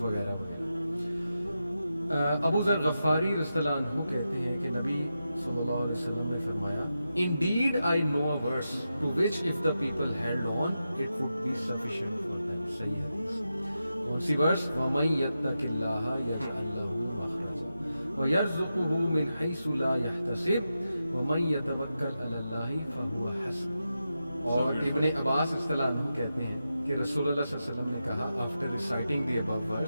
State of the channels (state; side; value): inverted; both; correlation -0.89